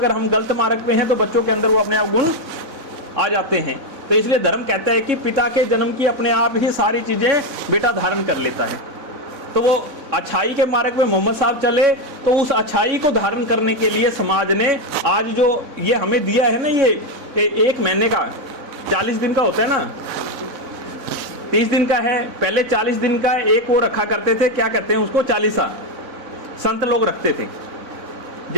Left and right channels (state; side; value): late; left; 4.0 ms